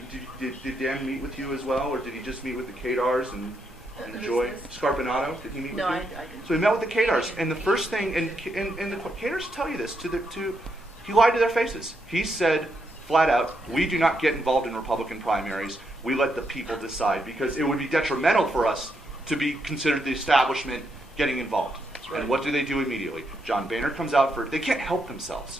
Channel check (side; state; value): both; normal; correlation 0.79